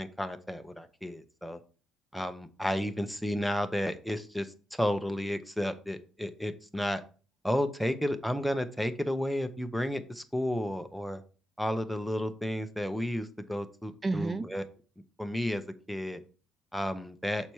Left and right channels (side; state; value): both; normal; correlation 0.94